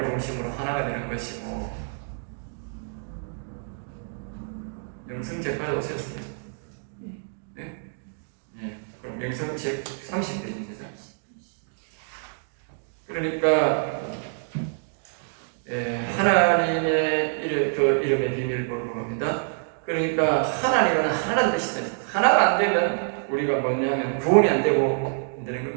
중심으로 하나가 되는 것이고, 영성책까지 오셨어요. 네? 네. 그럼 영성책 30페이지입니다. 그러니까 하나님의 이름의 비밀을 보는 겁니다. 그러니까 하나님은 하나라는 뜻이다. 하나가 안 되면 우리가 뭐냐면 구원이 안 되고 안 되는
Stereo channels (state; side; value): silent; left; digital silence